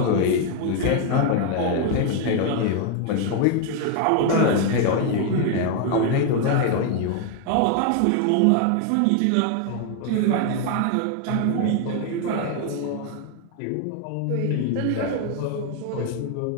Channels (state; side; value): different; both; correlation 0.01